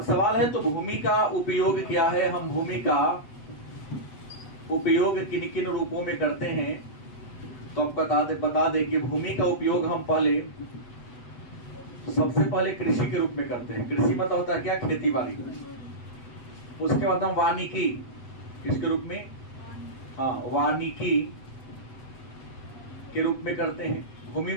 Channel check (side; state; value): right; late; 7.9 ms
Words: सवाल है तो भूमि का उपयोग क्या है? हम भूमि का उपयोग किन किन रूपों में करते हैं? तो आप बता दे कि भूमि का उपयोग हम सबसे पहले कृषि के रूप में करते हैं। कृषि मतलब होता है क्या? खेती बाड़ी। उसके बाद हम वानिकी किसके रूप में? हाँ, वानिकी के रूप में करते हैं। भूमि